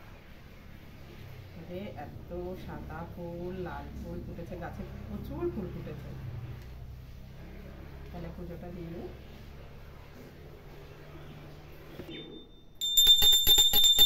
এত সাদা ফুল, লাল ফুল ফুটেছে, গাছে প্রচুর ফুল ফুটেছে। তাহলে পুজোটা দিয়ে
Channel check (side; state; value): both; identical; correlation 1.00